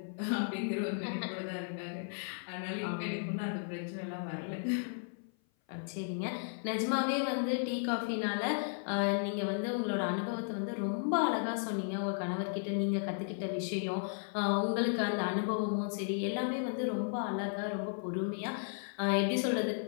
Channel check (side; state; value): right; silent; 55 dB below the other